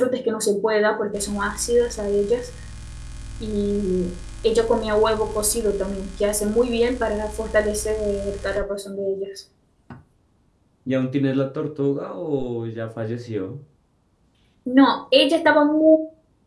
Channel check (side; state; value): both; identical; correlation 1.00